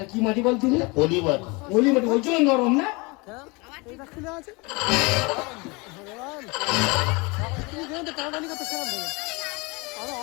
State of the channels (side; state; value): right; quieter; 27.1 dB